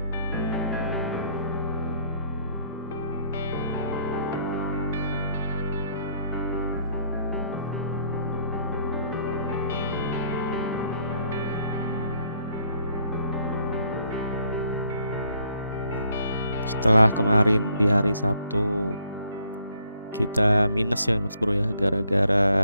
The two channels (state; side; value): inverted; both; correlation -0.67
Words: Setelah kemarin di hari Sabtu kita minus ya Mas Bro ya,